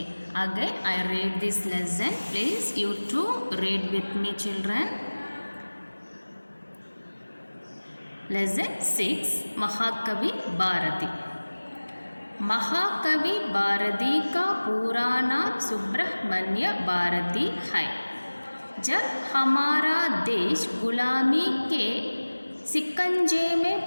again I read this lesson. Please you too read with me, children. Lesson 6, महाकवि भारती. महाकवि भारती का पूरा नाम सुब्रह्मण्य भारती है. जब हमारा देश गुलामी के शिकंजे में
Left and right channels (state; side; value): inverted; both; correlation -1.00